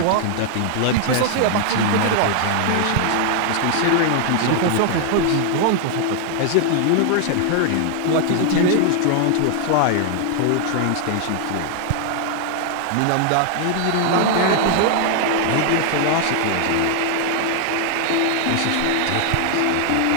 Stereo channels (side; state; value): both; different; correlation 0.00